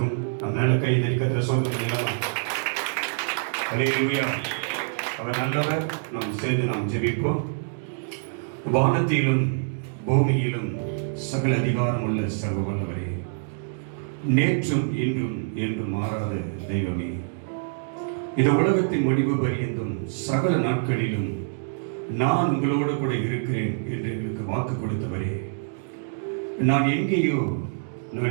நம் நல்ல கை தரிக்கத்திர சொல்லுங்கள். அல்லேலூயா. அவர் நல்லவர். நாம் சேர்ந்து நாம் ஜெபிப்போம். வானத்திலும் பூமியிலும் சகல அதிகாரம் உள்ள சர்வ வல்லவரே, நேற்றும் இன்றும் என்றும் மாறாத தெய்வமே, இந்த உலகத்தின் முடிவு பரியந்தும் சகல நாட்களிலும் நான் உங்களோடு கூட இருக்கிறேன் என்று எங்களுக்கு வாக்கு கொடுத்தவரே, நான் எங்கே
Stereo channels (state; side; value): silent; left; digital silence